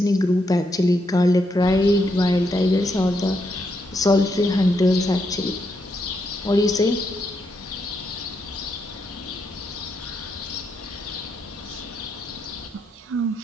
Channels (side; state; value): both; normal; correlation 0.80